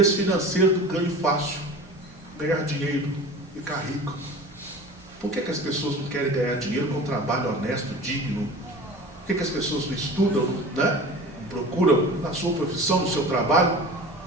financeiro do ganho fácil, ganhar dinheiro, ficar rico. Por que as pessoas não querem ganhar dinheiro com um trabalho honesto, digno? Por que as pessoas não estudam, né? Procuram na sua profissão, no seu trabalho,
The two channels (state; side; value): normal; both; correlation 0.37